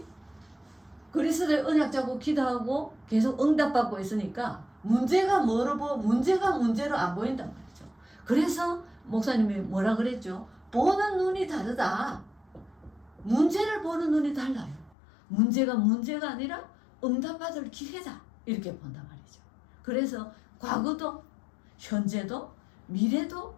그리스도의 언약 잡고 기도하고 계속 응답받고 있으니까 문제가 문제로 안 보인단 말이죠. 그래서 목사님이 뭐라 그랬죠? 보는 눈이 다르다. 문제를 보는 눈이 달라요. 문제가 아니라 응답받을 기회다. 이렇게 본단 말이죠. 그래서 과거도 현재도 미래도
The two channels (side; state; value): right; drops out; at 15.0 s